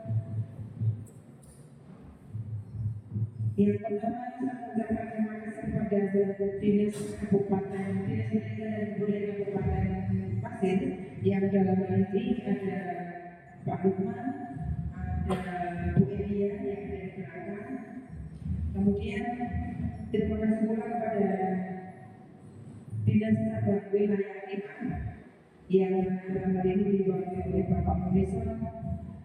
Yang pertama, saya mengucapkan terima kasih kepada Dinas Kabupaten, Dinas Pendidikan dan Kebudayaan Kabupaten Pasir yang dalam hal ini ada Pak Lukman, ada Bu Elia yang ada di belakang. Kemudian terima kasih pula kepada Dinas Tata Wilayah 5 yang dalam hal ini diwakili oleh Bapak Munison,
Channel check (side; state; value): both; identical; correlation 1.00